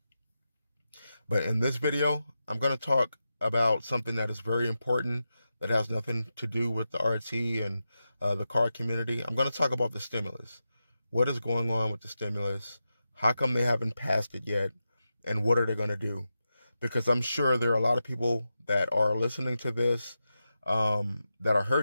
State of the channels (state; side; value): inverted; both; correlation -0.90